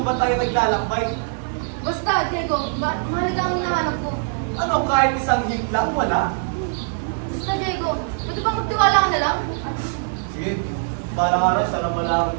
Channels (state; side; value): silent; left; 64 dB below the other